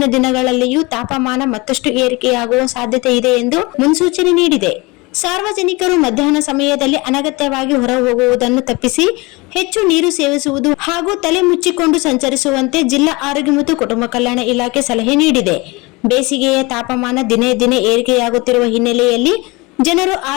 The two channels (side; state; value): right; quieter; 24.9 dB